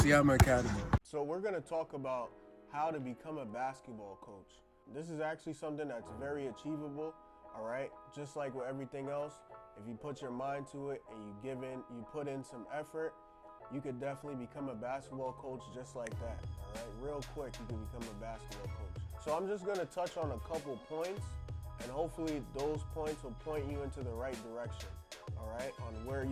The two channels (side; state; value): both; identical; correlation 1.00